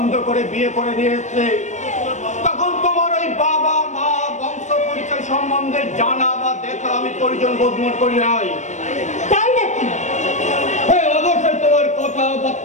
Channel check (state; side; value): late; right; 0.34 ms